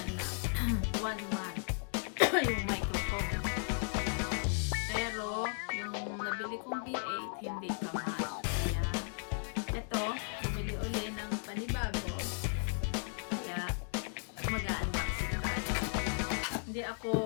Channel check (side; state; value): right; silent; 54 dB below the other